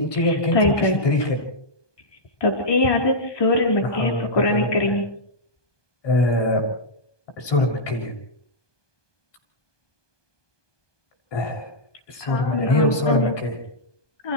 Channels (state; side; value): late; right; 1.2 ms